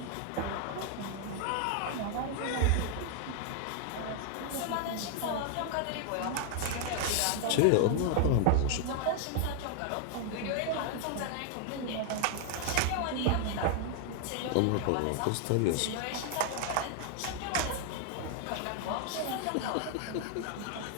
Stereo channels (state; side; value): different; both; correlation 0.00